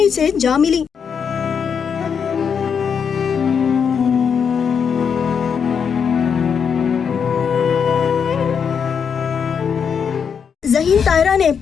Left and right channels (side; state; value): right; quieter; 6.8 dB